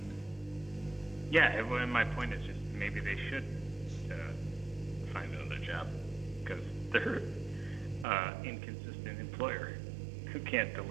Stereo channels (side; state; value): left; drops out; at 8.1 s